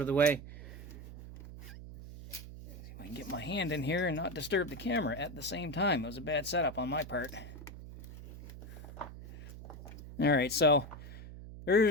of the way. See if I can get my hand in here and not disturb the camera at the same time. It was a bad setup on my part. Alright, so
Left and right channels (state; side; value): noise; right; hum, 13 dB below the sound